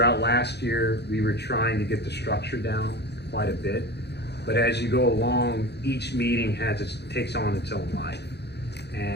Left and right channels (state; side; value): late; right; 0.49 ms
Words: last year, we were trying to get the structure down quite a bit. But as you go along, each meeting takes on its own life.